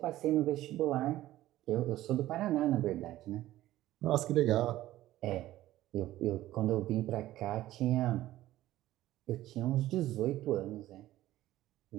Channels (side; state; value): left; quieter; 15.0 dB